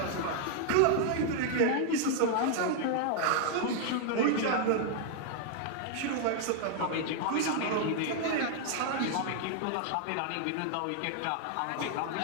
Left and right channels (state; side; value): different; both; correlation 0.00